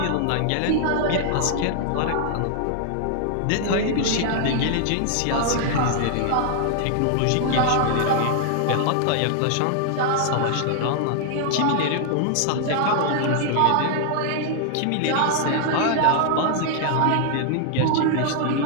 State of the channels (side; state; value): both; different; correlation 0.00